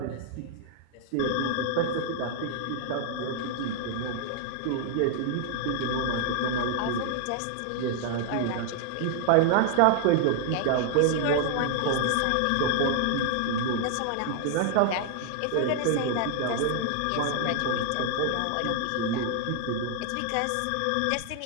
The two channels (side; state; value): both; different; correlation 0.00